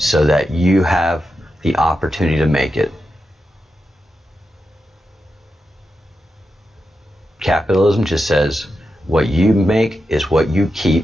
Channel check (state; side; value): normal; both; correlation 0.88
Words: that you have the opportunity to make it. Capitalism just says what you make is what you